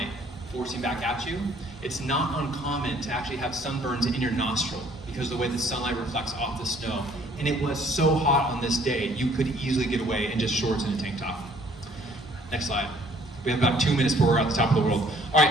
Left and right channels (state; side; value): normal; both; correlation 0.59